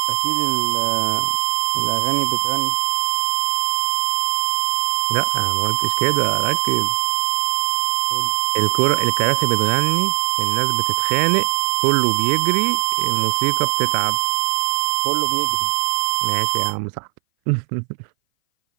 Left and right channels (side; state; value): left; silent; 60 dB below the other